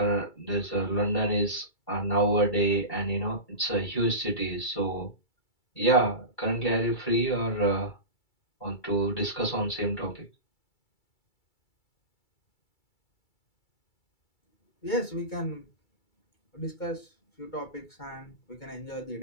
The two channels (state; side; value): late; right; 2.3 ms